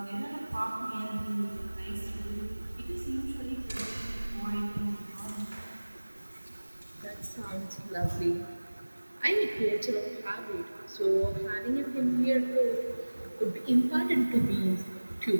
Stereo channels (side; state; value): both; inverted; correlation -1.00